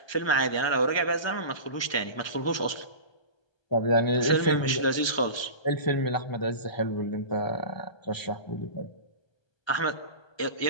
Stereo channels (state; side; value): late; right; 1.2 ms